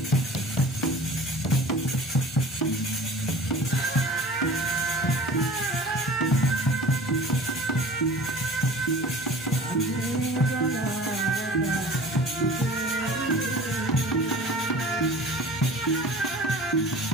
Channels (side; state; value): both; normal; correlation 0.42